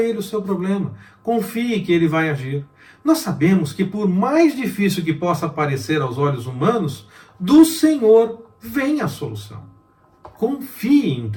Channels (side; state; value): both; identical; correlation 1.00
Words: o seu problema. Confie que ele vai agir. Nós sabemos que por mais difícil que possa parecer aos olhos humanos, do Senhor vem a solução. Confie